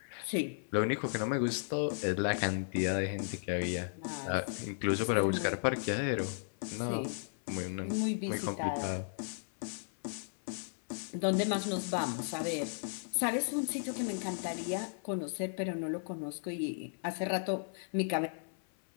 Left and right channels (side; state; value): right; silent; 54 dB below the other